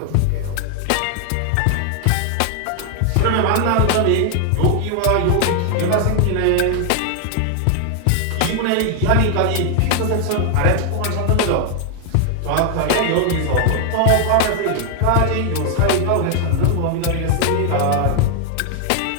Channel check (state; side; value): different; both; correlation 0.00